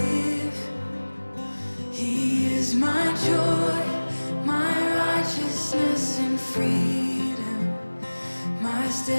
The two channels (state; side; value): inverted; both; correlation -1.00